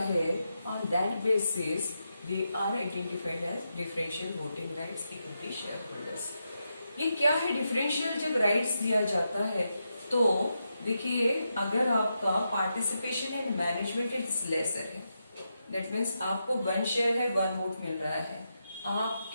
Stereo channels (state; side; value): inverted; both; correlation -0.85